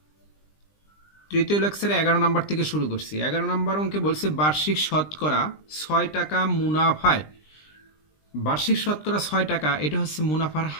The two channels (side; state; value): right; late; 20 ms